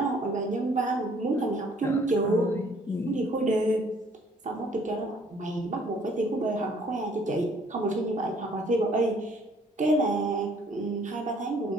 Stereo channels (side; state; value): both; normal; correlation 0.60